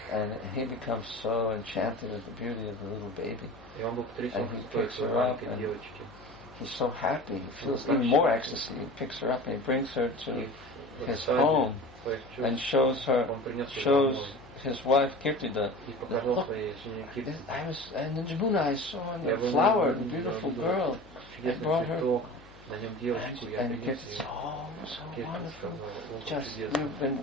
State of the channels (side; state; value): left; noise; hum, 22 dB below the sound